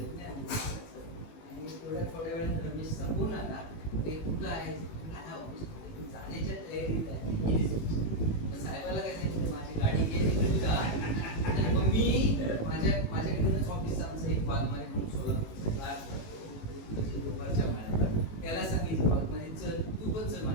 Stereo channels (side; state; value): right; late; 18 ms